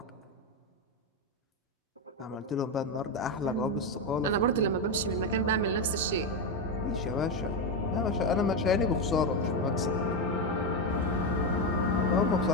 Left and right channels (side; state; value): both; normal; correlation 0.09